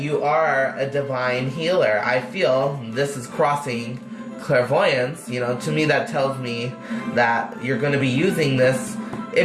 are a divine healer. I feel this is crossing clairvoyance. You know, to me that tells me that you're going to be using this.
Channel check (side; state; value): both; identical; correlation 1.00